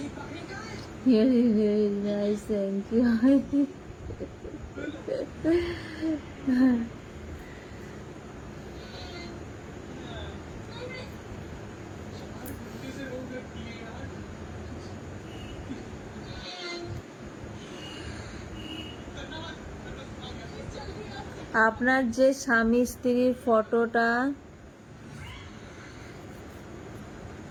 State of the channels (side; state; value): both; identical; correlation 1.00